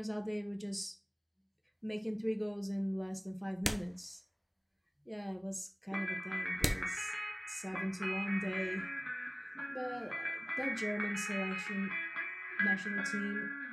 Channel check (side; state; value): both; identical; correlation 1.00